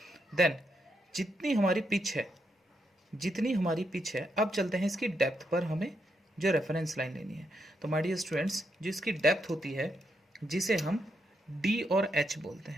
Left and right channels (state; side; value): normal; both; correlation 0.80